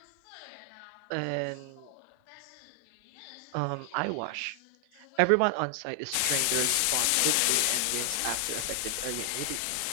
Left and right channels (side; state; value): both; different; correlation 0.00